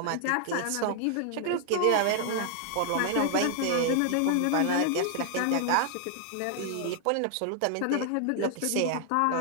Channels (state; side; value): different; both; correlation 0.00